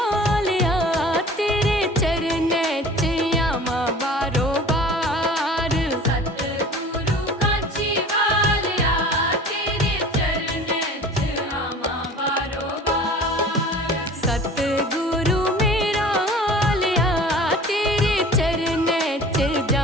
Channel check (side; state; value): both; normal; correlation 0.43